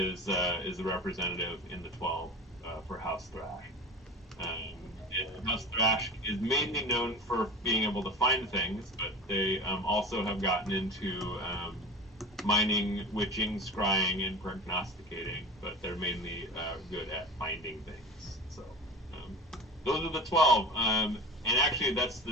the representative in the 12 for House Thrash. And House Thrash is mainly known for being able to find things, but they also have gotten into mining, witching, scrying, and prognosticating, but they're mainly good at finding things. So those are the 12. And actually, that's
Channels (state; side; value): normal; both; correlation 0.34